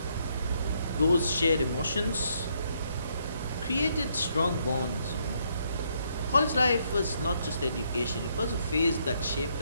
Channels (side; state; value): both; inverted; correlation -0.73